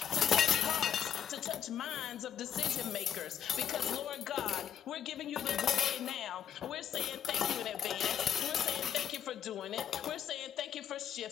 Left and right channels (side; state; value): right; quieter; 9.1 dB